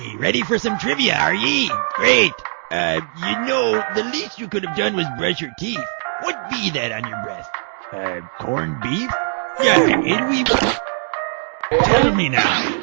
Ready for some trivia, are ye? Great. You know, the least you could have done was brush your teeth. What be that on your breath? Corned beef? Yeah, and we... Tell me now,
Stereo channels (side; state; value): left; silent; digital silence